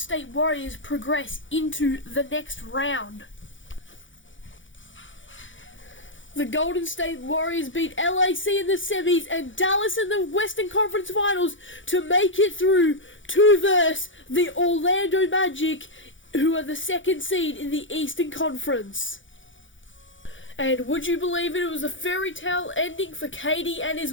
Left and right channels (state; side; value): late; right; 0.56 ms